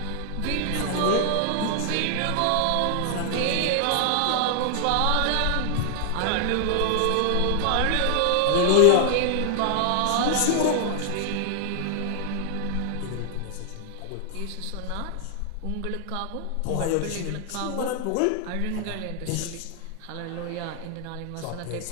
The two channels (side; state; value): both; different; correlation 0.00